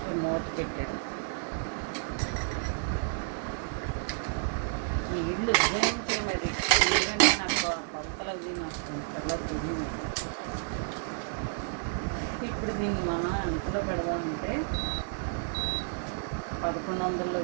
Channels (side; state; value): left; silent; 55 dB below the other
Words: మూత పెట్టాను. నీళ్ళు ఉజ్జాయించే మరి ఎందుకంటే నాకు కొలతలు అవి నాకు చాలా తెలియదు. ఇప్పుడు దీన్ని మనం ఎంతలో పెడదామంటే 1100లో